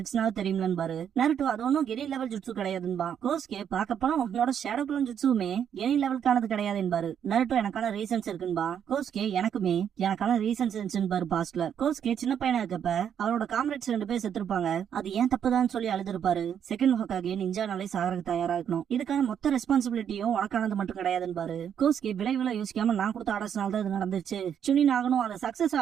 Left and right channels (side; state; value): left; quieter; 8.6 dB